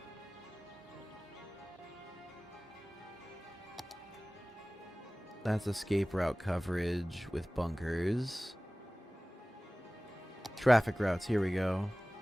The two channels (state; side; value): normal; both; correlation 0.98